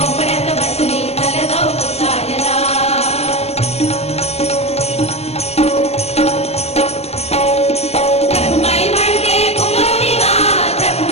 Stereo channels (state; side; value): late; right; 0.30 ms